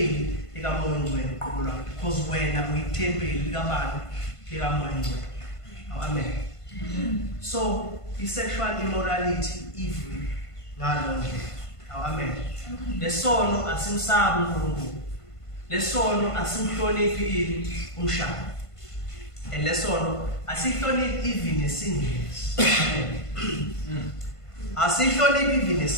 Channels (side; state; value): right; late; 1.5 ms